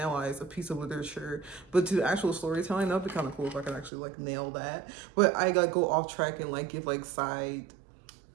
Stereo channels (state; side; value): drops out; left; at 3.9 s